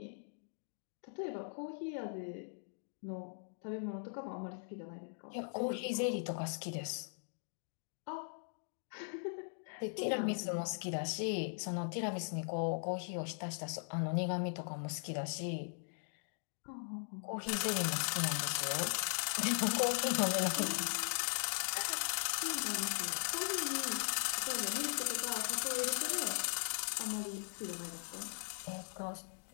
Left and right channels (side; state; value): right; silent; digital silence